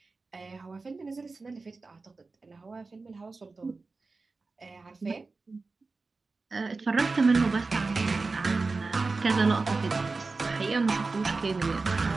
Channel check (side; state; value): left; quieter; 3.9 dB